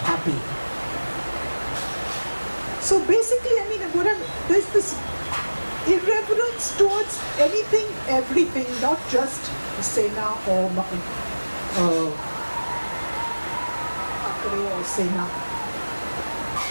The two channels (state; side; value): inverted; both; correlation -1.00